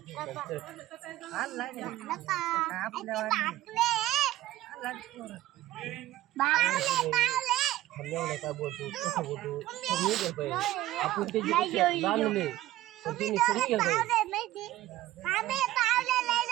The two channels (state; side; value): quieter; left; 15.3 dB